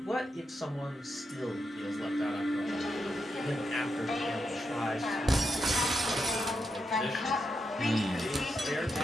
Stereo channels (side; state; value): both; normal; correlation 0.85